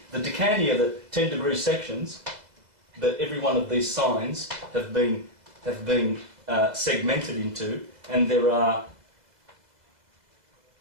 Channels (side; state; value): left; late; 2.0 ms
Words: The decani are the 10-degree sections that every one of these signs have been segmented into, and there are